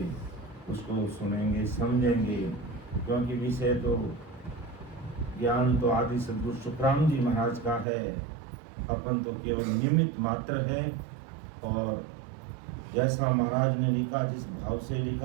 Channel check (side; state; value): left; drops out; at 7.9 s